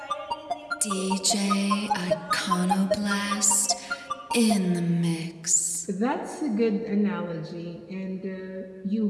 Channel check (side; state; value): both; identical; correlation 1.00